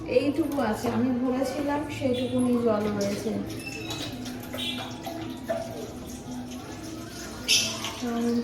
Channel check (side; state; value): both; identical; correlation 1.00